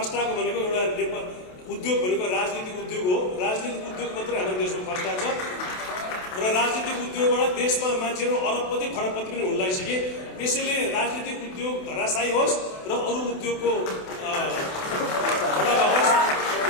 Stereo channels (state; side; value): late; right; 28 ms